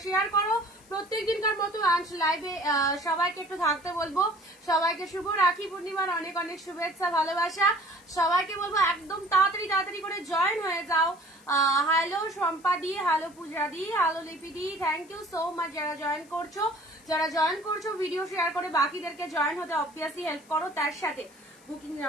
শেয়ার করো প্রত্যেক দিনকার মতো। অ্যান্ড লাইভে সবাইকে একটু থাকতে বলবো। সবাইকে শুভ রাখি পূর্ণিমার অনেক অনেক শুভেচ্ছা, ভালোবাসা। সবাইকে বলবো একদম তাড়াতাড়ি তাড়াতাড়ি করে জয়েন হয়ে যাও। হ্যালো শম্পা দি, হ্যালো পূজা দি, হ্যালো লিপি দি, থ্যাংক ইউ সো মাচ যারা জয়েন করছো। যারা জয়েন করছো ভিডিও শেয়ার করে বাকিদেরকে জয়েন হতে অবভিয়াসলি হেল্প করো। তার সাথে বুকিং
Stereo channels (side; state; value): left; noise; hiss, 26 dB below the sound